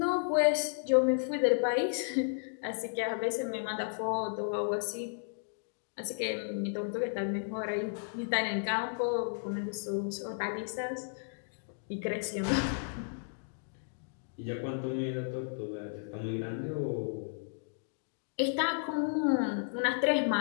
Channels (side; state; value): right; silent; digital silence